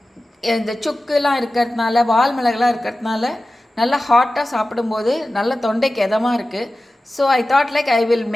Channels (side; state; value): both; normal; correlation 0.95